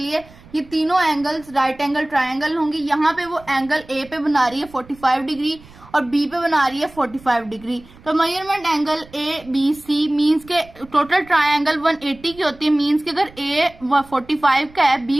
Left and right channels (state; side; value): noise; right; rumble, 23 dB below the sound